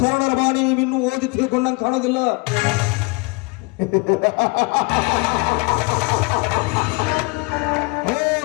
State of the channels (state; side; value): quieter; right; 28.5 dB